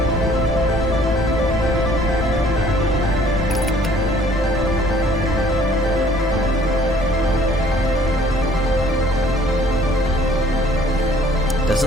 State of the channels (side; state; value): both; normal; correlation 0.57